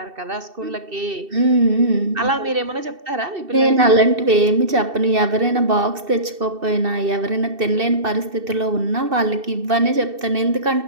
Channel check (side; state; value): left; late; 2.7 ms